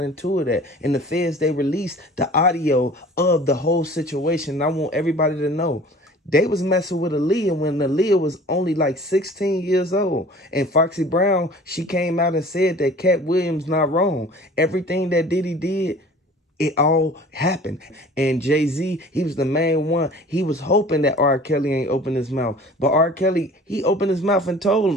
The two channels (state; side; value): normal; both; correlation 0.45